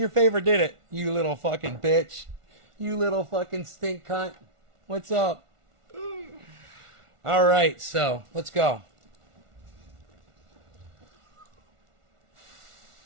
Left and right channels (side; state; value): left; late; 1.4 ms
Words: favor, did it? You little fucking bitch. You little fucking stink cunt. What's up? All right, so let's go.